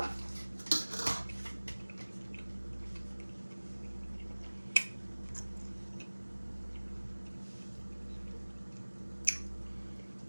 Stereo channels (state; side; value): inverted; both; correlation -1.00